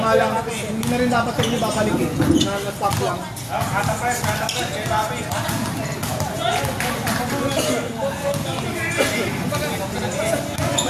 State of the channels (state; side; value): identical; both; correlation 1.00